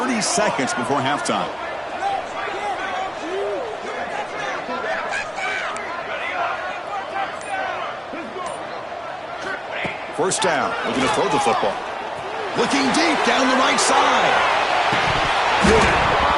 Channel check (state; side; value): identical; both; correlation 1.00